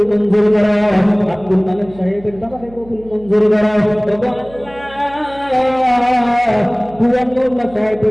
মঞ্জুর করো। আব্দুল মালিক সাহেবের বাবাকে কবুল মঞ্জুর করো আল্লাহ। পুরানুল্লাহ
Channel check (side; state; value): right; noise; hum, 21 dB below the sound